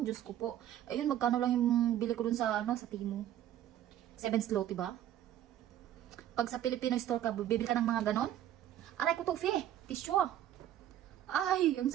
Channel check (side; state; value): left; quieter; 11.8 dB